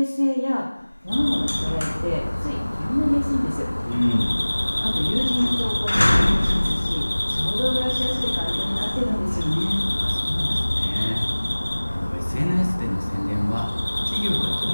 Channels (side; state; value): both; inverted; correlation -1.00